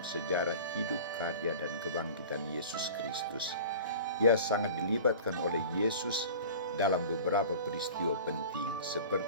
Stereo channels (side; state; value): both; inverted; correlation -0.40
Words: hidup, karya, dan kebangkitan Yesus Kristus. Ia sangat dilibatkan oleh Yesus dalam beberapa peristiwa penting,